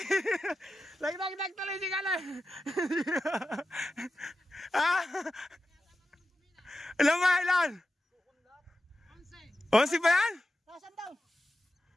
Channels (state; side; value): normal; both; correlation 0.91